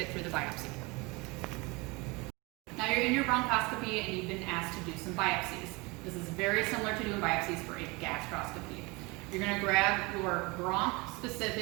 through the biopsy. Now you're in your bronchoscopy, and you've been asked to do some biopsies. This is very similar to doing biopsies for a gastroscopy. You're going to grab your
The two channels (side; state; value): left; quieter; 25.8 dB